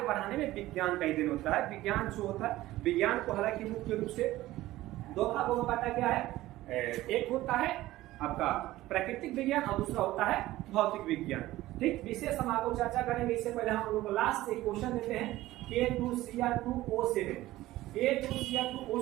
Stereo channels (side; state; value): left; quieter; 16.4 dB